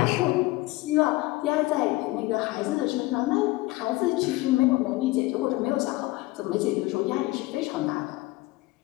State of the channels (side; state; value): right; quieter; 20.1 dB